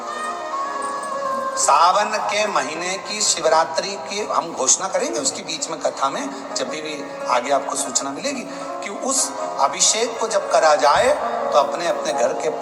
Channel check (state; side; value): identical; both; correlation 1.00